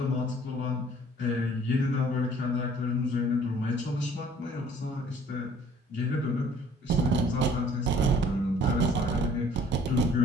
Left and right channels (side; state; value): both; normal; correlation 0.56